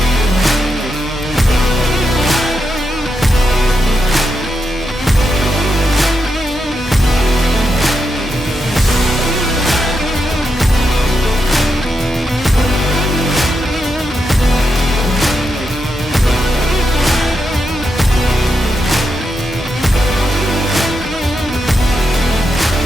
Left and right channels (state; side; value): normal; both; correlation 0.85